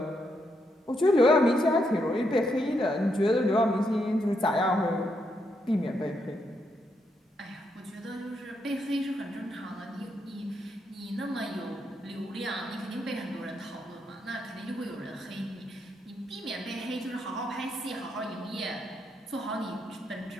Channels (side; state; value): both; normal; correlation 0.79